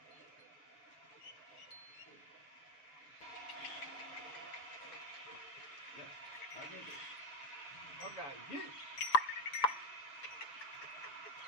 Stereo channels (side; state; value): right; late; 7.0 ms